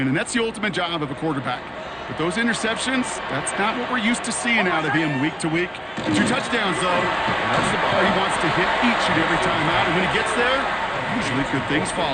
and that's the ultimate job of a quarterback. With those interceptions, that's not what we're used to seeing out of him week to week. 2 touchdowns, though. That's the ball he wants to hit each and every time out, and when he gets there, usually good things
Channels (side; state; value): both; identical; correlation 1.00